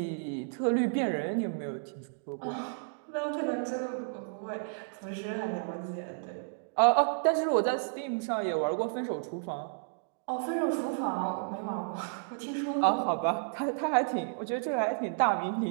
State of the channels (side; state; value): left; silent; digital silence